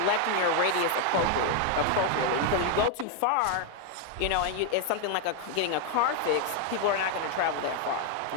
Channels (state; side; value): different; both; correlation 0.00